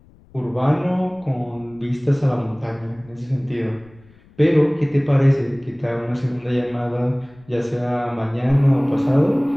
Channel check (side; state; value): left; noise; rumble, 27 dB below the sound